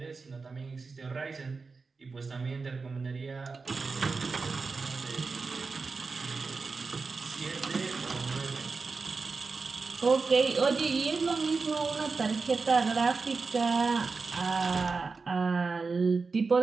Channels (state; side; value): quieter; left; 4.4 dB